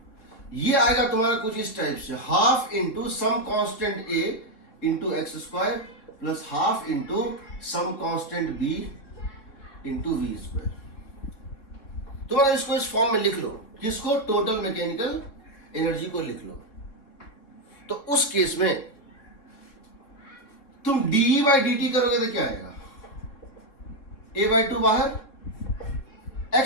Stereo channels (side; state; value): right; late; 3.7 ms